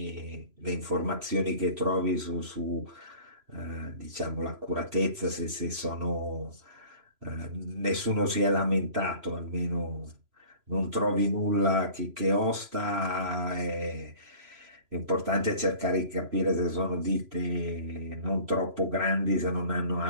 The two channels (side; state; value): left; late; 3.0 ms